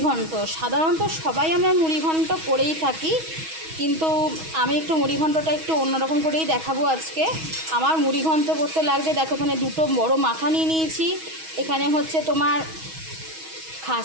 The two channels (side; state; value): left; late; 6.3 ms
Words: সাধারণত সবাই আমরা মুড়িঘণ্ট করেই থাকি, কিন্তু আমি একটু মুড়িঘণ্টটা একটু অন্যরকম করেই দেখাবো আজকে। আমার মুড়িঘণ্ট করতে লাগবে, দেখো এখানে দুটো বড় মাথা নিয়ে নিয়েছি, এখানে হচ্ছে তোমার খাস